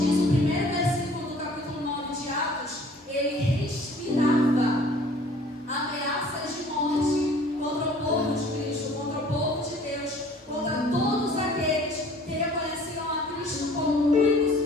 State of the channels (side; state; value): both; normal; correlation 0.52